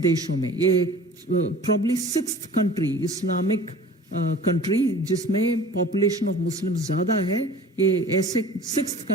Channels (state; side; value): normal; both; correlation 0.43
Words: में, ये probably 6th country, Islamic country जिसमें पॉपुलेशन ऑफ मुस्लिम ज़्यादा है, ये ऐसे 6th